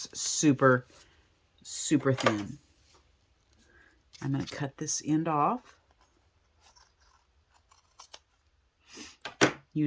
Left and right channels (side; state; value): both; identical; correlation 1.00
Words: super, super thin. I'm going to cut this end off.